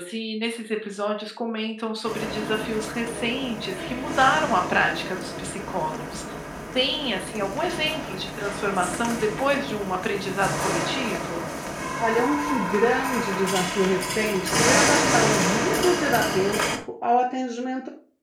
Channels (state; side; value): identical; both; correlation 1.00